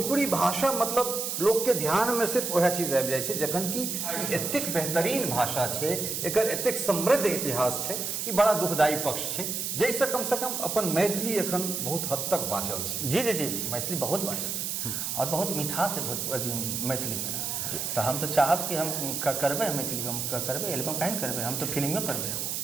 भाषा मतलब लोग के ध्यान में सिर्फ वह चीज आबि जाइ छै, जखन कि एतेक बेहतरीन भाषा छै, एकर एतेक समृद्ध इतिहास छै, ई बड़ा दुखदायी पक्ष छै, जैसे कम से कम अपन मैथिली एखन बहुत हद तक बाँचल छै। जी जी जी, मैथिली बहुत बाँचल छै, और बहुत मिठास है मैथिली में। तो हम तो चाहब कि हम करबे मैथिली में, हम करबे एल्बम कहीं करबे, हम तो फिल्मियो करबे,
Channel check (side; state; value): right; noise; hiss, 2 dB below the sound